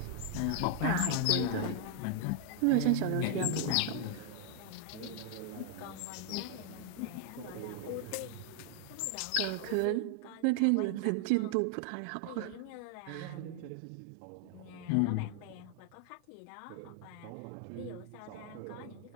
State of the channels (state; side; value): different; both; correlation 0.00